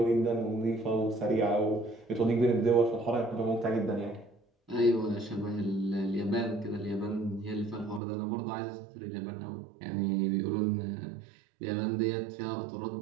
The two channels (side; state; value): left; drops out; at 8.0 s